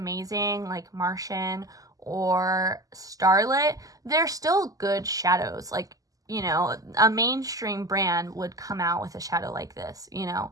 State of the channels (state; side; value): late; left; 0.17 ms